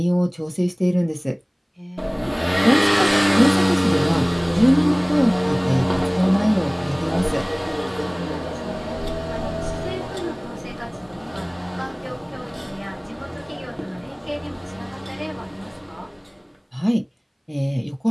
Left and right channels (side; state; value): both; identical; correlation 1.00